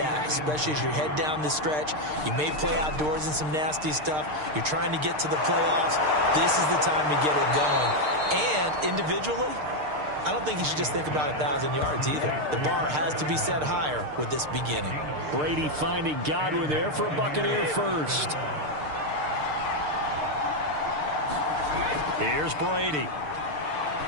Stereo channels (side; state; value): left; late; 6.6 ms